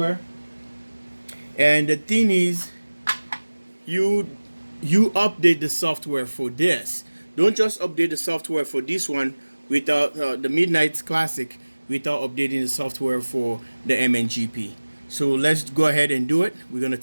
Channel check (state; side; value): inverted; both; correlation -1.00